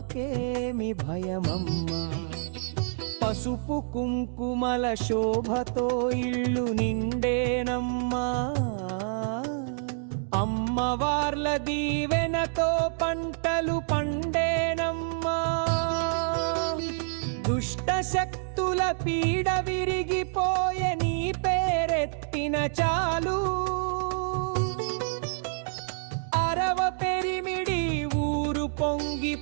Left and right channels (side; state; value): left; silent; digital silence